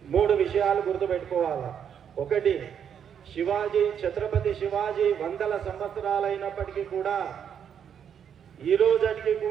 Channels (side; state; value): left; quieter; 8.2 dB